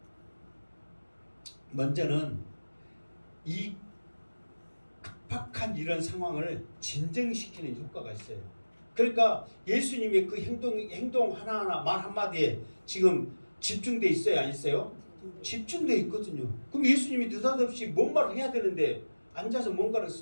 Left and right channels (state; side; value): inverted; both; correlation -1.00